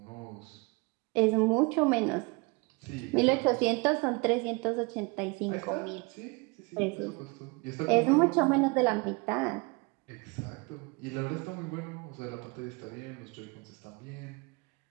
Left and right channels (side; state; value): left; quieter; 28.8 dB